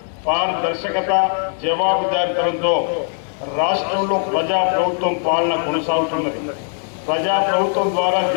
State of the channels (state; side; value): silent; right; 66 dB below the other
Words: పారదర్శకత, జవాబుదారీతనంతో రాష్ట్రంలో ప్రజా ప్రభుత్వం పాలన కొనసాగుతున్నది. ప్రజా ప్రభుత్వం ద్వారా